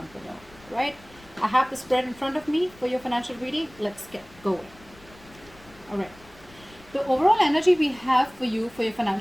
below. Right, I have the spread in front of me for your financial reading. Let's get going. All right, the overall energy we have for you for your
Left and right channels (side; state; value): left; noise; rumble, 24 dB below the sound